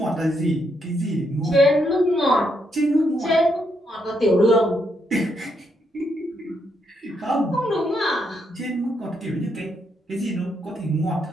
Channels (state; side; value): normal; both; correlation 0.78